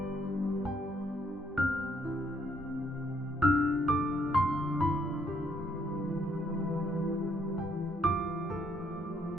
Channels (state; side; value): normal; both; correlation 0.70